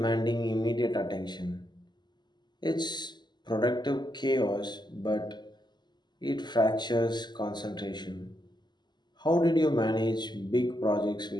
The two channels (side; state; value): right; late; 0.21 ms